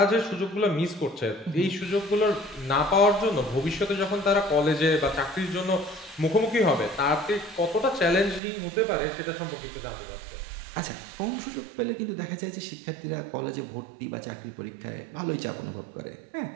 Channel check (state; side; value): drops out; left; at 8.4 s